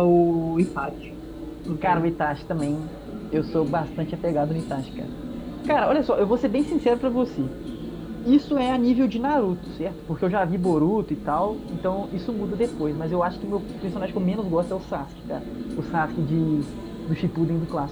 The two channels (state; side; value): identical; both; correlation 1.00